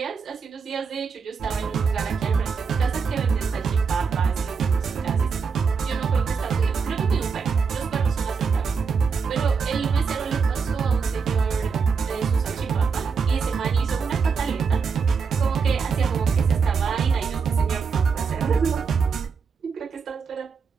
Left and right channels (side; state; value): left; quieter; 5.5 dB